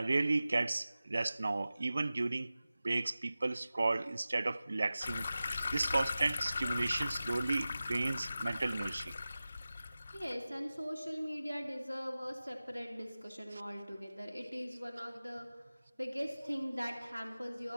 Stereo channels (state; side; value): inverted; both; correlation -0.96